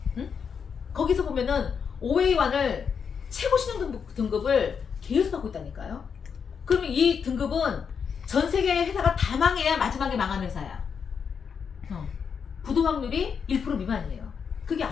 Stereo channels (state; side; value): quieter; right; 6.6 dB